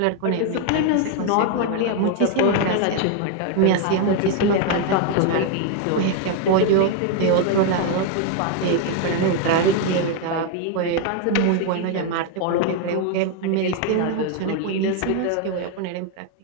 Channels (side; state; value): both; different; correlation 0.01